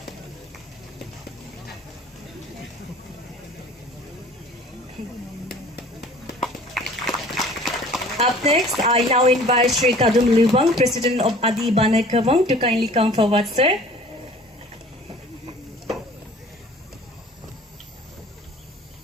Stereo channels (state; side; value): normal; both; correlation 0.48